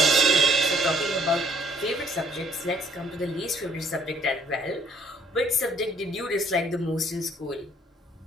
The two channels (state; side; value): normal; both; correlation 0.62